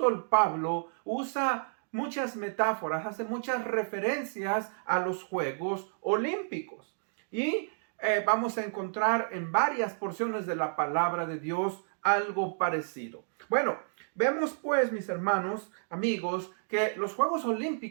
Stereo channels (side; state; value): left; silent; digital silence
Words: Pablo, usa muchas metáforas, hace muchas referencias a los Juegos Olímpicos. Y vamos a encontrar en varias porciones de la palabra de Dios algo parecido. Bueno, vemos pues, mis hermanos, amigos, que los Juegos